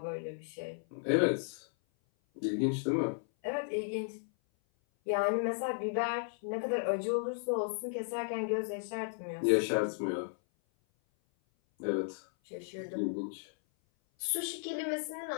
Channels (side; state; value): right; silent; 55 dB below the other